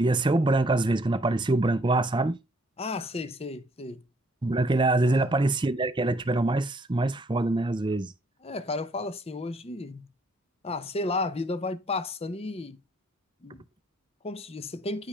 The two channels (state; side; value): normal; both; correlation 0.65